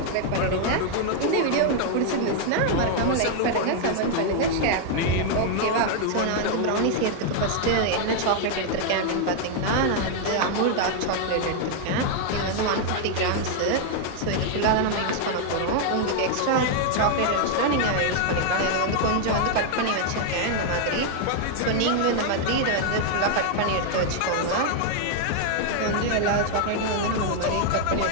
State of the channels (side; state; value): both; different; correlation 0.00